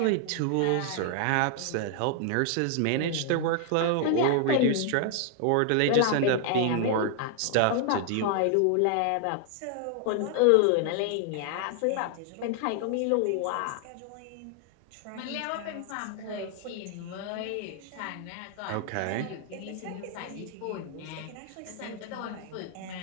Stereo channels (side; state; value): both; different; correlation 0.00